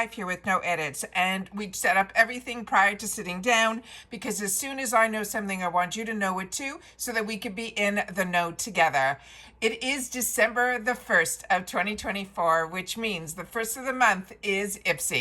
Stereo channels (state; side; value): identical; both; correlation 1.00